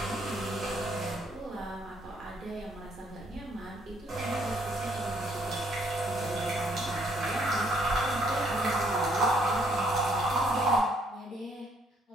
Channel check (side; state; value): both; normal; correlation 0.67